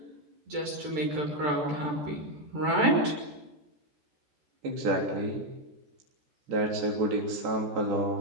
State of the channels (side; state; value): left; late; 14 ms